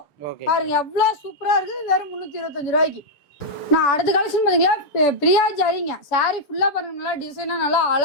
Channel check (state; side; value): late; right; 6.8 ms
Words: பாருங்க எவ்வளவு சூப்பரா இருக்குது. வெறும் 325 ரூபாய்க்கு. நான் அடுத்த கலெக்ஷன் பாத்தீங்களா, பிரியா ஜரிங்க. சாரி ஃபுல்லா பாருங்க நல்லா டிசைனா நல்லா